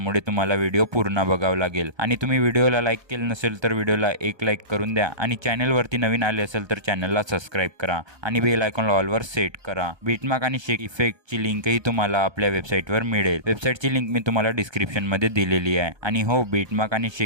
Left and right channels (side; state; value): left; late; 1.3 ms